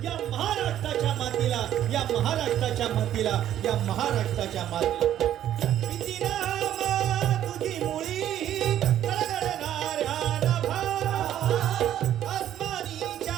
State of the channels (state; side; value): quieter; left; 11.4 dB